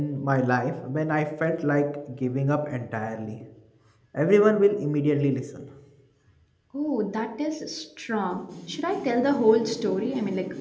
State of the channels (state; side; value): identical; both; correlation 1.00